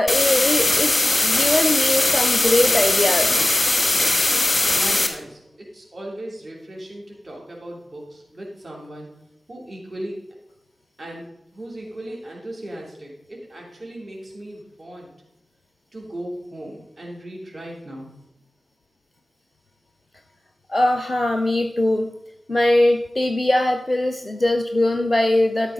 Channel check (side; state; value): both; normal; correlation 0.96